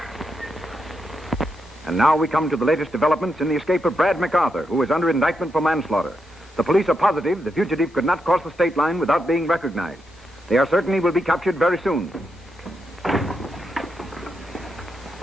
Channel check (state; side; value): normal; both; correlation 0.83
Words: And now we come to the latest developments in the escape of Brad McArthur, who is under indictment for manslaughter. The police are positive the fugitive could not cross the state line without being recognized. They are certain he will be captured very soon.